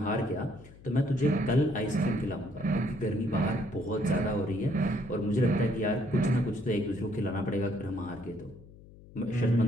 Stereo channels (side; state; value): left; noise; hum, 21 dB below the sound